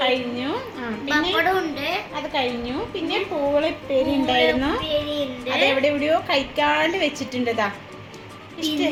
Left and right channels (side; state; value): both; identical; correlation 1.00